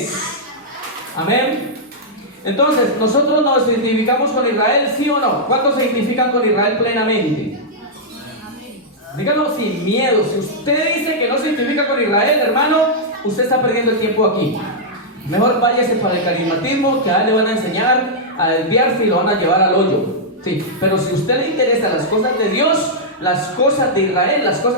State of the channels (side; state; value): both; normal; correlation -0.07